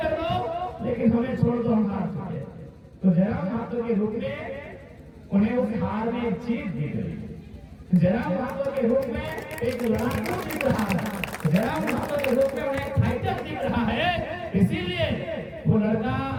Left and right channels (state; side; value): identical; both; correlation 1.00